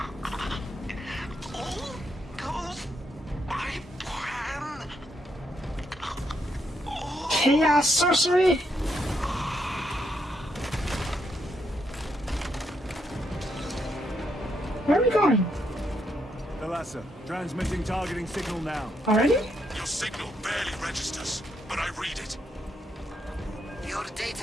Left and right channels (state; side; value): normal; both; correlation 0.78